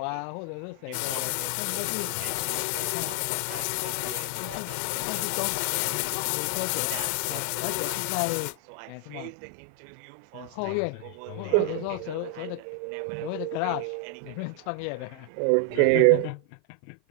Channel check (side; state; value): both; different; correlation 0.00